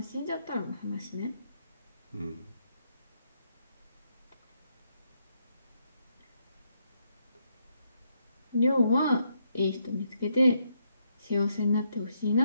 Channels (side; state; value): both; inverted; correlation -0.76